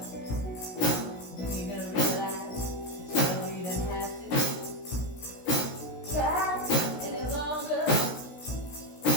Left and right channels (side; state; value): right; late; 16 ms